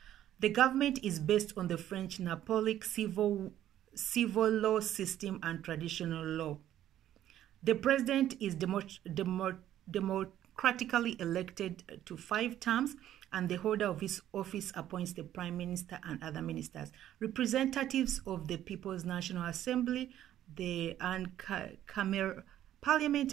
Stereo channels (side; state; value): left; quieter; 12.0 dB